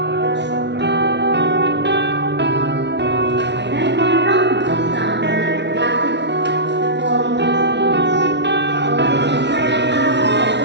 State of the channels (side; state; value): left; late; 0.51 ms